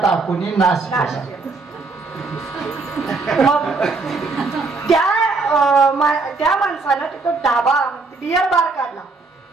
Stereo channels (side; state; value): left; quieter; 3.9 dB